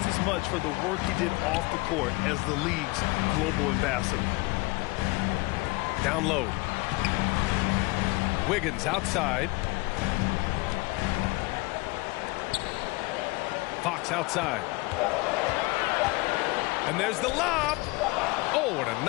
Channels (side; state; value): right; quieter; 24.3 dB